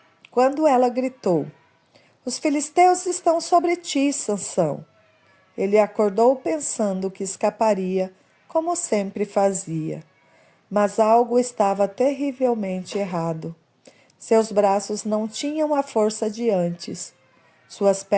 estão sobre ti, Sansão. Ele acordou pensando que escaparia, como sempre fazia. Mas algo estava terrivelmente errado. Seus braços não tinham a força de antes. Suas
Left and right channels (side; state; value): both; identical; correlation 1.00